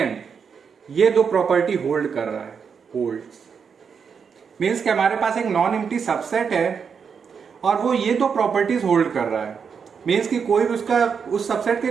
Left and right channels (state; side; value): quieter; left; 6.4 dB